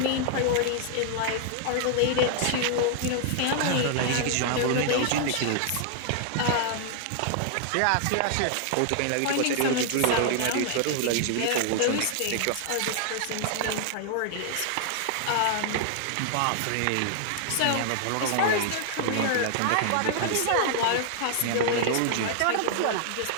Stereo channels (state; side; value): different; both; correlation 0.00